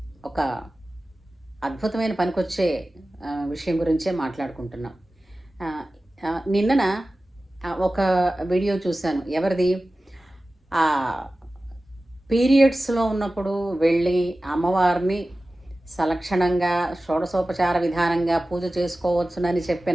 ఒక అద్భుతమైన పనికొచ్చే విషయం గురించే మాట్లాడుకుంటున్నాం. నిన్నన ఒక వీడియో చూశాను. ఎవరిది? పీరియడ్స్లో ఉన్నప్పుడు వెళ్ళి అమ్మవారిని సలక్షణంగా షోడశోపచార విధానంగా పూజ చేసుకోవచ్చునని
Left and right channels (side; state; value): both; normal; correlation 0.96